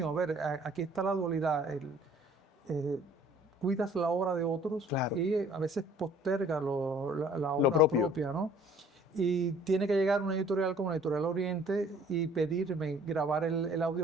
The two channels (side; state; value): both; normal; correlation 0.55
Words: A ver, aquí está la dualidad. Cuidas la obra de otros, Claro, y a veces posterga la obra propio. propia, ¿no? Y tiene que llegar una editorial como la Editorial Oriente y pedirme grabar el